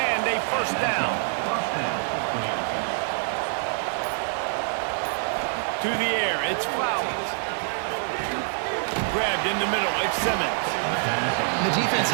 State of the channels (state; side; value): silent; left; 61 dB below the other